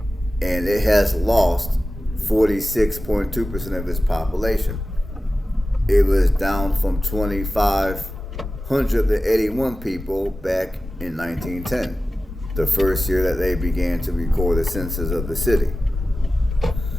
and it has lost 46.2% of its population. It was down from 2,581 people back in 1910, the first year that they began to record the census of the city.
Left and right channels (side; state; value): both; normal; correlation 0.95